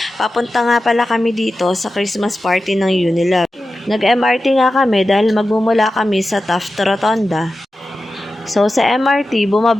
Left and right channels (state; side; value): normal; both; correlation 0.93